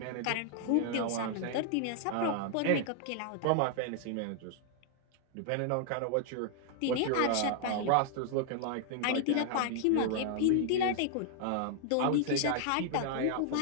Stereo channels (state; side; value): different; both; correlation -0.01